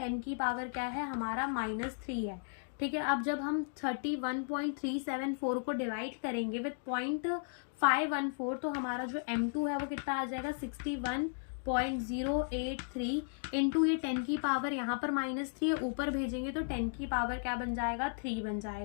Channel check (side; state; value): right; silent; digital silence